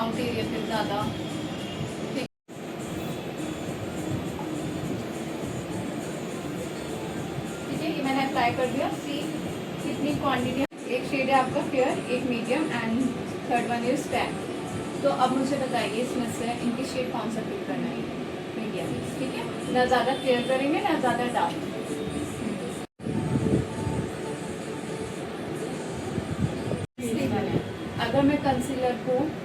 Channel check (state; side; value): identical; both; correlation 1.00